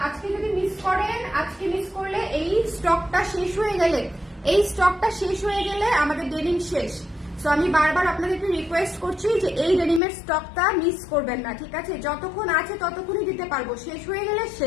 আজকে যদি মিস করেন, আজকে মিস করলে এই স্টকটা শেষ হয়ে গেলে আমাদের ডেনিম শেষ। সো আমি বারবার আপনাদেরকে রিকোয়েস্ট করছি যে এই ডেনিমের স্টকটা মিস করবেন না, ঠিক আছে? যতক্ষণ আছে ততক্ষণই দিতে পারবো, শেষ হয়ে গেলে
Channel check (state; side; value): drops out; right; at 10.0 s